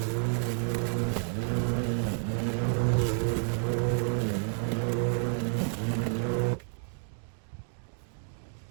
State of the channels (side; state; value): left; silent; 58 dB below the other